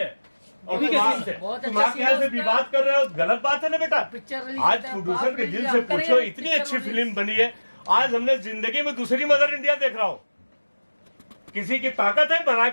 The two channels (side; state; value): both; inverted; correlation -1.00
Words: और बहुत तुम अच्छा आके यहाँ से विवाद कर रहे हो, गलत बात है ना बेटा। पिक्चर रिलीज आज होता है, प्रोड्यूसर के बाप दिल रे, से हम करेंगे, पूछो, इतनी पिक्चर अच्छी रिलीज। फिल्म बनी है। आज हमने जिंदगी में दूसरी मदर इंडिया देख रहा हूँ। किसी की ताकत है बना